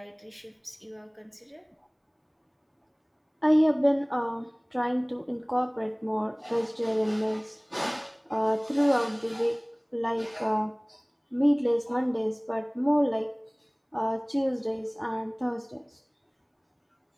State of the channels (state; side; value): identical; both; correlation 1.00